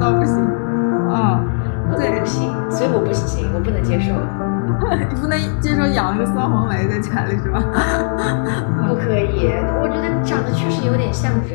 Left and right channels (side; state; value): right; silent; digital silence